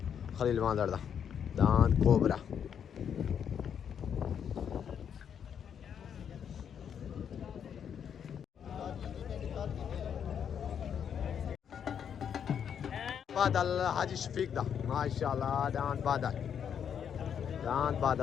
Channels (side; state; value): right; quieter; 8.1 dB